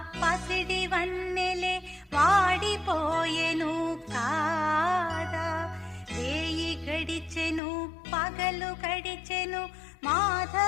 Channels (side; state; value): right; drops out; at 7.6 s